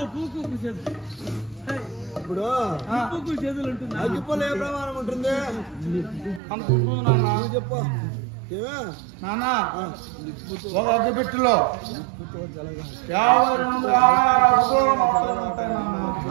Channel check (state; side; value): drops out; left; at 6.4 s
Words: ఇప్పుడు అగ్గిపొల ఏ ప్రమాణం ఉంటుంది? చెప్పు నాన్న. ఒక అగ్గిపెట్టులో